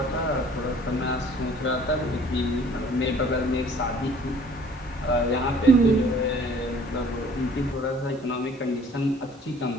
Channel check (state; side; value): normal; both; correlation 0.54